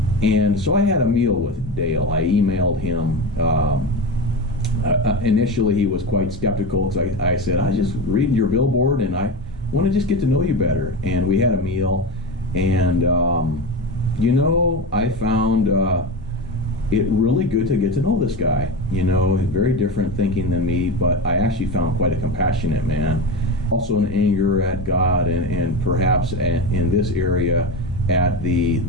And so I had a meal with Dale. I emailed him. Initially, he was quite skeptical because I said, I just reading your billboard, and I want to just get to know you better. And we had a meal, and I found it really good to get to know this guy. Very different thinking than me, but I actually found quite a compassionate man. Also an anger at God and perhaps in this area at the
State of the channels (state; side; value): normal; both; correlation 0.22